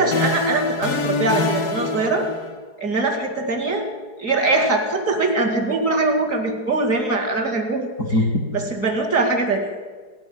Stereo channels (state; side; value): late; right; 4.8 ms